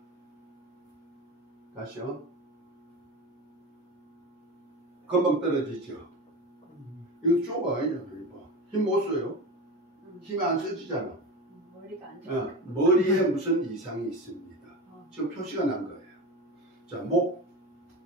다시요. 금방 떨어지죠. 이거 쪼가 아니잖아. 힘 못 써요. 힘이 안 써지잖아. 머리가 안 좋아. 머리에 무슨 이상이 있습니다. 지금 표시가 난 거예요. 자,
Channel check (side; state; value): both; normal; correlation 0.26